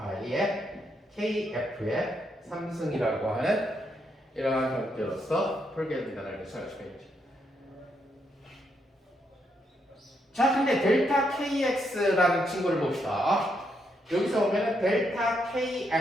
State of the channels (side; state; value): both; normal; correlation 0.78